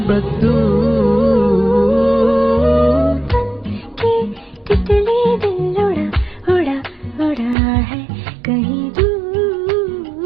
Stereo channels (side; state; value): left; drops out; at 7.6 s